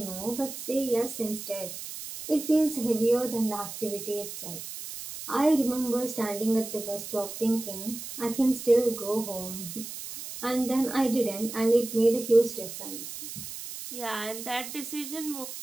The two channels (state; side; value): noise; right; hiss, 9 dB below the sound